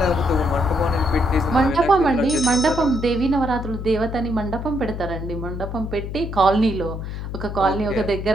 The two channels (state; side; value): noise; left; hum, 7 dB below the sound